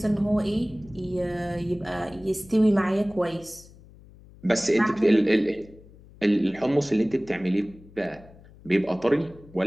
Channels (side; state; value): left; noise; hum, 23 dB below the sound